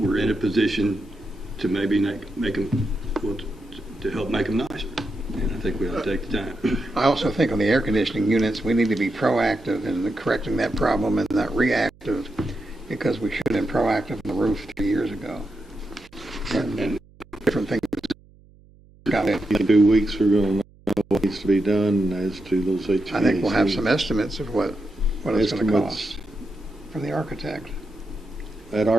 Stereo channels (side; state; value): right; noise; hum, 27 dB below the sound